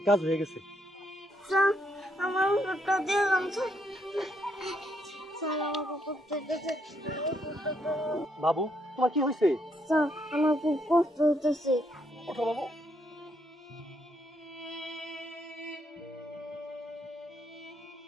কাজ হয়ে গেছে। স্যার, আমার ওষুধটা দিয়ে যান স্যার। স্যার, আমার খুব কষ্ট হইতাছে। বাবু, তোমার কি হয়েছে? স্যার, আমার খুব কষ্ট হইতাছে। ওঠো বাবু।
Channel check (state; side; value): normal; both; correlation 0.75